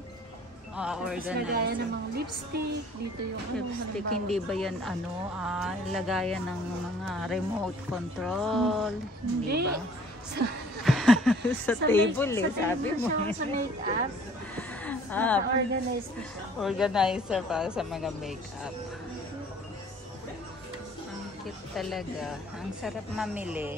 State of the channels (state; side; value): normal; both; correlation 0.54